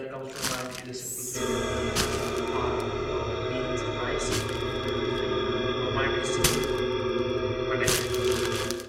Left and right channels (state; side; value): identical; both; correlation 1.00